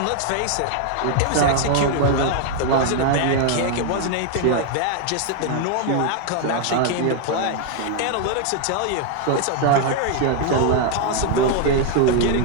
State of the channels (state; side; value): different; both; correlation 0.00